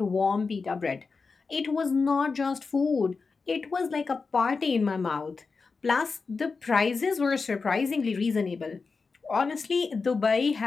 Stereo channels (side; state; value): right; quieter; 4.5 dB